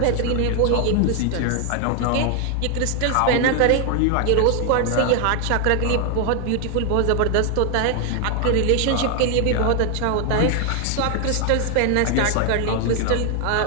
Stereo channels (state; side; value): different; both; correlation 0.00